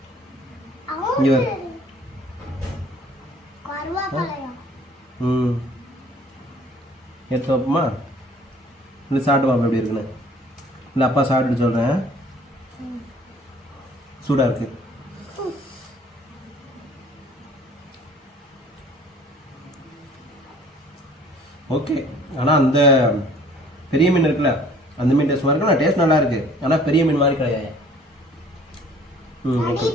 இங்க வர. கருவாப்பலையா எடுத்து வைப்போமா? இல்லை சாப்பிட்டு பாப்பா எப்படி இருக்குன்னு. இல்லை அப்பா சாப்பிட்டு சொல்கிறேன். சூடாக இருக்கு. ஓகே ஆனால் அந்த பெரிய மீன் இருக்குல்ல அந்த மீன் டேஸ்ட் மாதிரி இருக்கும். நான் டேஸ்ட் நல்லா இருக்கு ஆனால் பெரிய மீன் மாதிரி கிடையாது. ஓகே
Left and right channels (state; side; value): normal; both; correlation 0.54